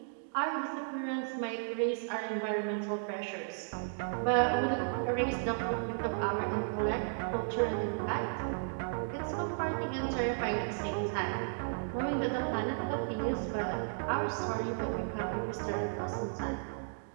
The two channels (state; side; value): silent; left; digital silence